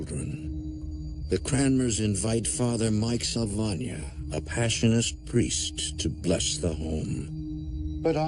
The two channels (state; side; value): identical; both; correlation 1.00